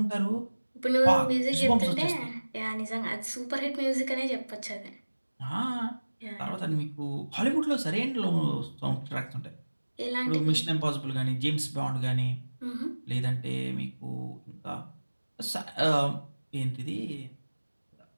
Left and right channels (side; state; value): both; inverted; correlation -1.00